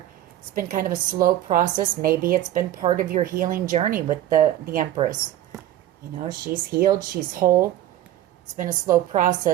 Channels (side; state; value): left; quieter; 13.0 dB